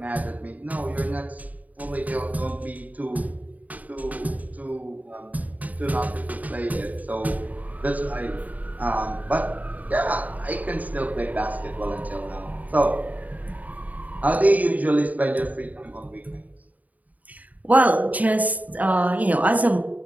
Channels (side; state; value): left; late; 0.075 ms